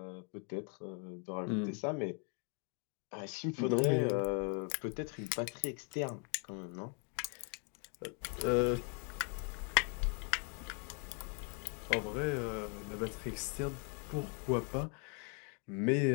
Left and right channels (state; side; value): quieter; right; 37.6 dB